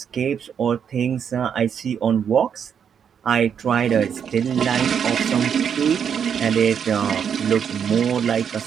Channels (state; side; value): quieter; left; 7.7 dB